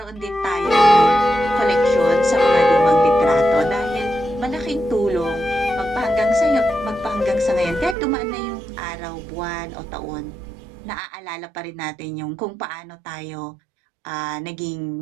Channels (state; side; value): drops out; left; at 8.0 s